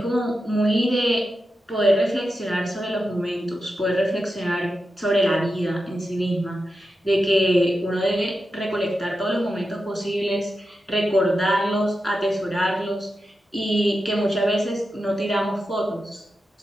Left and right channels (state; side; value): normal; both; correlation 0.90